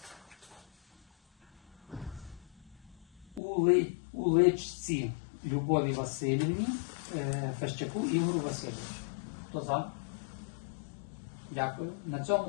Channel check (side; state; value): right; drops out; at 3.4 s